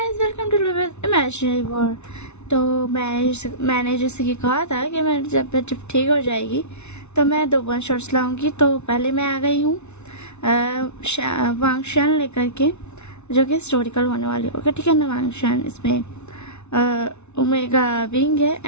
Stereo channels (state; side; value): late; right; 0.81 ms